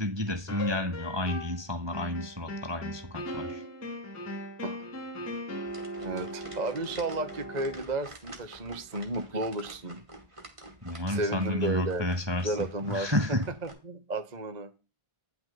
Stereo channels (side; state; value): left; late; 1.2 ms